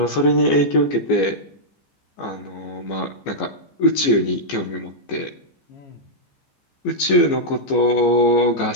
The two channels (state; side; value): late; right; 15 ms